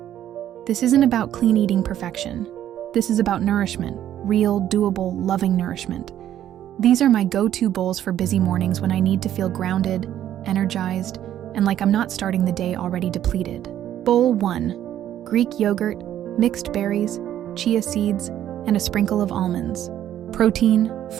This isn't about clean eating perfection. This is about nourishment, real, doable, loving nourishment. These are my go-to bowls for busy mornings when I need to feel grounded, energized, and like I'm not starting the day already depleted. Bowl 1. Greek yogurt, mixed berries, chia seeds, and a sprinkle of almonds. Protein,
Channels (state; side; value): quieter; left; 11.4 dB